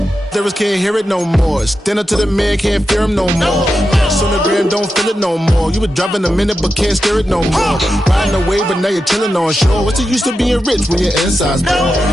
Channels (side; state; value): both; normal; correlation 0.89